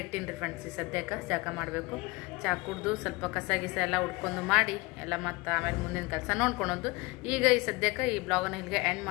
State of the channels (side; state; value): right; quieter; 24.4 dB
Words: ಇಟ್ಟಿನಿ ರೀ ಫ್ರೆಂಡ್ಸ್. ಈ ಸದ್ಯಕ್ಕೆ ಜಾಕ ಮಾಡಬೇಕು. ಚಹಾ ಕುಡ್ದು ಸ್ವಲ್ಪ ಕಸ ಗಿಸ ಎಲ್ಲ ಉಡ್ಕೊಂಡು ಮಾಡಿ ಎಲ್ಲ ಮತ್ತು ಆಮೇಲೆ ಮುಂದಿನ ಕೆಲಸ ನೋಡ್ಕೊಳೋದು. ಈಗ ಈ ಸದ್ಯಕ್ಕೆ ಈ ಬ್ಲಾಗನ್ನು ಇಲ್ಲಿಗೆ ಎಂಡ್